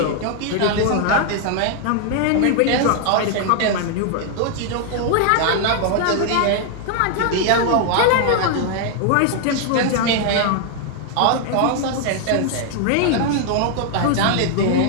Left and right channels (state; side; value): different; both; correlation 0.00